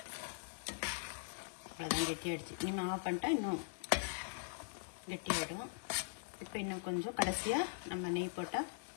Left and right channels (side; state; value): right; silent; digital silence